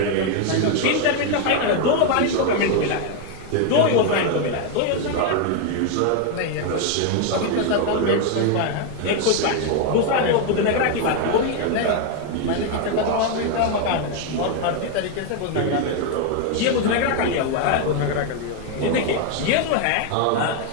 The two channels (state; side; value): different; both; correlation 0.01